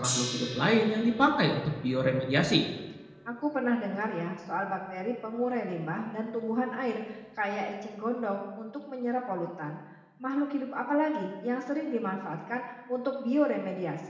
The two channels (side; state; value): both; identical; correlation 1.00